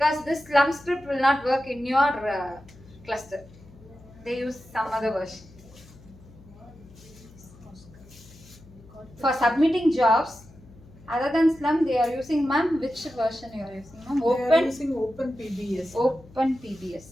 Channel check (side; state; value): left; noise; hum, 22 dB below the sound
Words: this slum script will not work in your cluster. They use some other version. For submitting jobs, other than slum, they are using, ma'am, which version you are using, ma'am? They are using Open PBS. Open PBS.